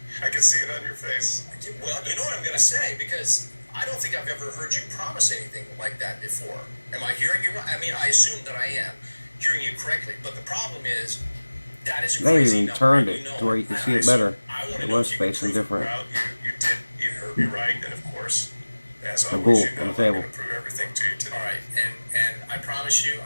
I can see it on your face. Well, you know what I'm going to say, because I don't think I've ever heard you promise anything like that before. Am I hearing you right? I mean, I assume that I am hearing you correctly, but the problem is that is a crazy number. They even turned it to where you can see it better. It was facing different. Well, you heard me right, and of course, as The always, bull you know, on the I'm table. going to prove everything to you today. All right, and I promise you,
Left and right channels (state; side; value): inverted; both; correlation -1.00